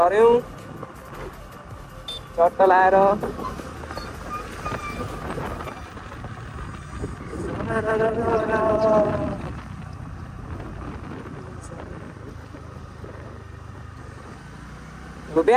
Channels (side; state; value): both; identical; correlation 1.00